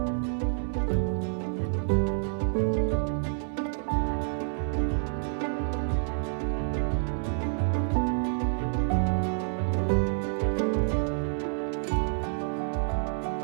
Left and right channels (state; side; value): silent; left; digital silence